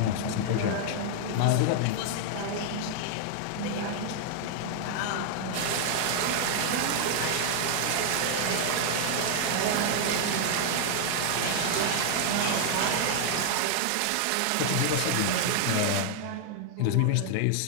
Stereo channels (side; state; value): both; different; correlation 0.00